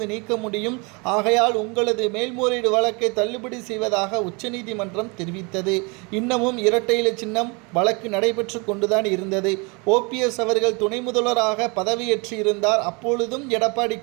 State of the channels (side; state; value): left; quieter; 29.9 dB